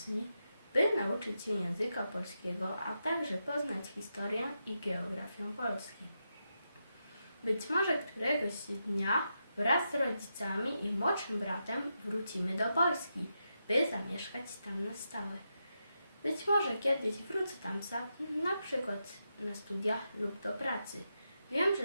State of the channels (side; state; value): both; inverted; correlation -0.86